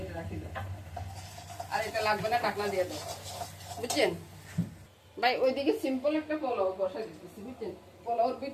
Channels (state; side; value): identical; both; correlation 1.00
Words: এটা রাখি দাও। আর এটা লাগবে না, ঢাকনা দিয়ে দাও, বুঝছেন ভাই? ওইদিকে সিম্পল একটা পোলাও বসা দিতেছি, বুঝছেন? পোলাওর